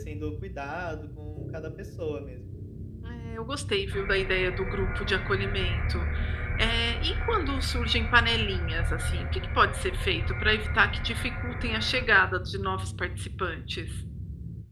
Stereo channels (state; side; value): identical; both; correlation 1.00